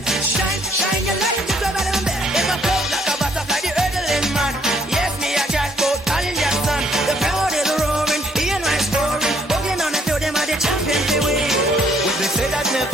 Shine, shine your light. Just over the bed. If I float like a butterfly, the earthling man. Yes, me a catboat, calling your son. The crowd is roaring, hearing my story. Walking on the field, them are the champions they win. When they said I'd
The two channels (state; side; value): normal; both; correlation 0.66